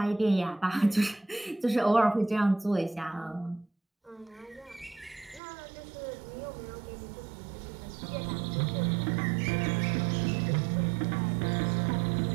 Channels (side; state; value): left; drops out; at 5.4 s